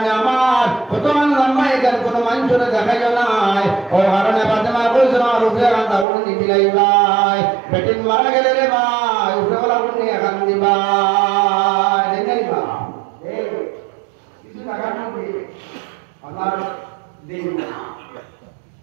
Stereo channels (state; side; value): drops out; left; at 6.1 s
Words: আমার কত লম্বা এখানে কোনো মানুষের দেখাইল নাই। ও কারণে বাদে কইছিল আমার উপরে কান্দা উড়ে দিতে লাইবাই, বেটিন মারা গেলে রে ভাই উপরে বলা উড়ে এখান দিবাই দেখাইবা। কিছু টাকা নেই আমার দিন না